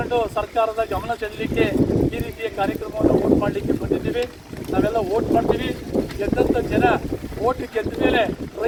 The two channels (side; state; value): both; identical; correlation 1.00